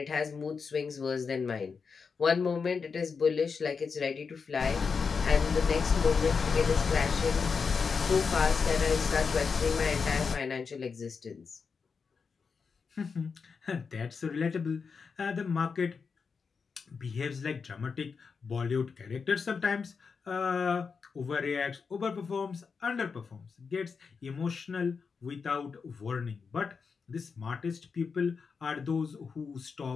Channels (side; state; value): right; quieter; 5.4 dB